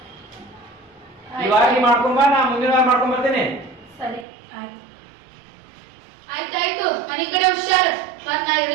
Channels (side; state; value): left; drops out; at 4.2 s